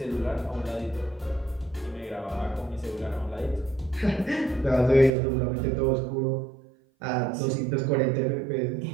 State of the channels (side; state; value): left; drops out; at 5.1 s